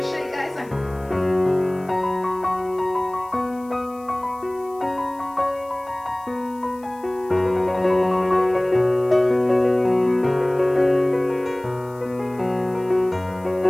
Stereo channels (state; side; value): noise; left; hiss, 27 dB below the sound